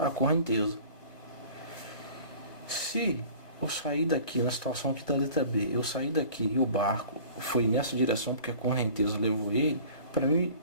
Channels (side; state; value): right; late; 1.3 ms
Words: a correnteza. Se eu sair daqui, na situação aqui da letra B, eu sair daqui e o barco foi nessa direção porque a correnteza levou ele, para mim